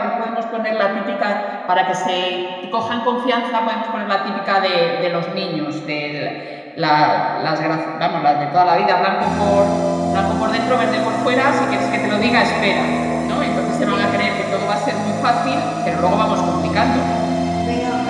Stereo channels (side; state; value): both; identical; correlation 1.00